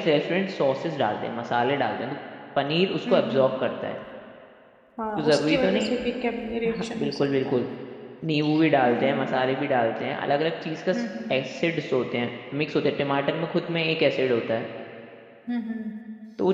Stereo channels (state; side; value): identical; both; correlation 1.00